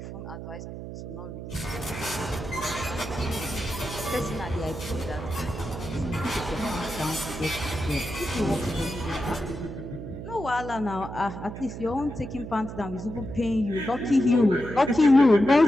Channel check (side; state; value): right; noise; hum, 9 dB below the sound